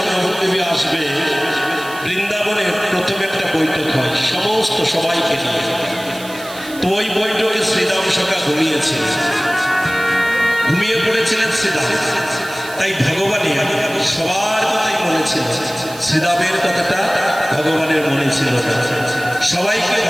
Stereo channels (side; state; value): right; noise; hiss, 16 dB below the sound